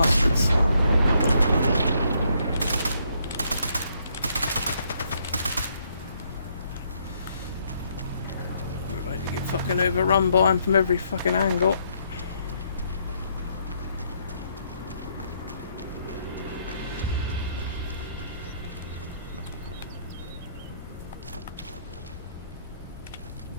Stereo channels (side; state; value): both; inverted; correlation -0.72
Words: We're about to get fucking overrun by him from every fucking angle.